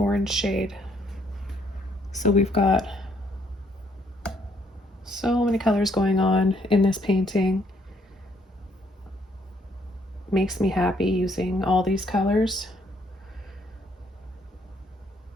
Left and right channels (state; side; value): normal; both; correlation 0.68